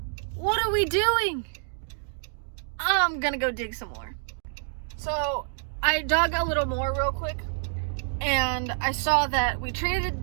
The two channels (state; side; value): silent; left; digital silence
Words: what are we doing? I'm gonna go dig some more. So, I dug a little more real quick, and I saw that we traded